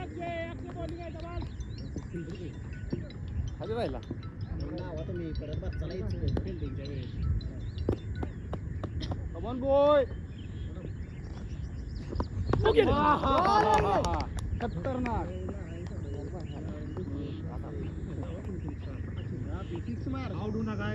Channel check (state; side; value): identical; both; correlation 1.00